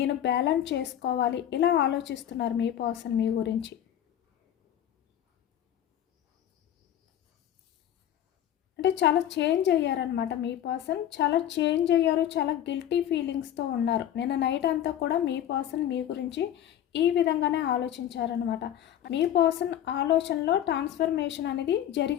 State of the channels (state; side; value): quieter; right; 10.9 dB